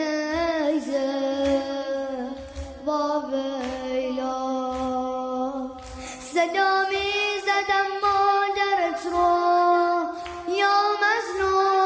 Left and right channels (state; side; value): identical; both; correlation 1.00